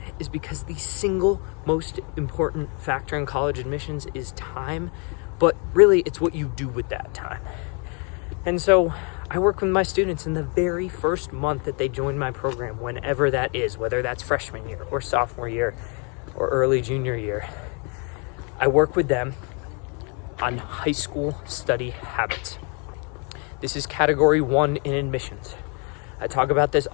is because the single most important factor in college admissions is time, but really it's what you do with that time. And so I work with my students in the very first month that they join my program, whenever that is, whether that's freshman year or sophomore year or early junior year. I work with them on high school study habits. This is category 1 in admissions. I talk about this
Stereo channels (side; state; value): right; quieter; 35.8 dB